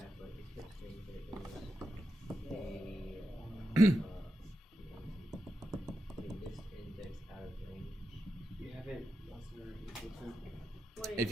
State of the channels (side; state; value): both; normal; correlation 0.88